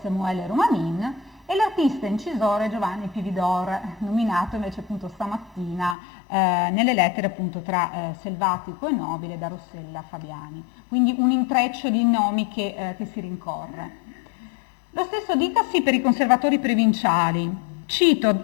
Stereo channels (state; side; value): drops out; right; at 6.0 s